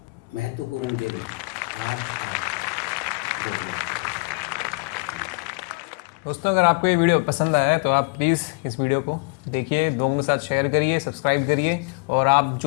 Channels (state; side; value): quieter; right; 30.4 dB